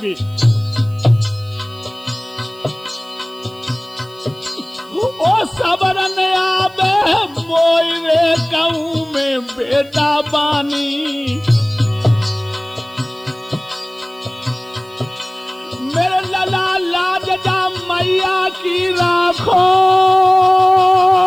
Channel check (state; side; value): noise; right; hiss, 28 dB below the sound